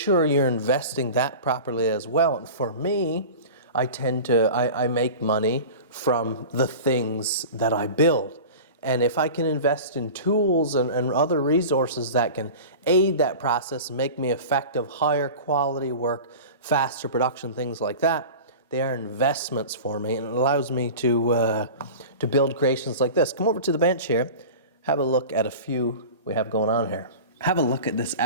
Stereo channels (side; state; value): both; inverted; correlation -0.35